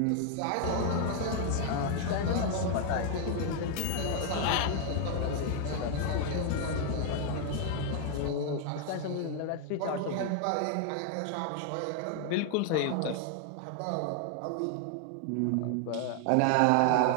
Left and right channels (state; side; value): different; both; correlation 0.00